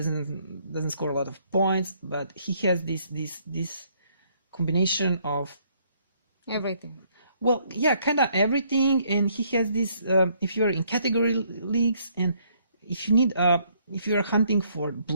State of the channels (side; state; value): both; inverted; correlation -0.68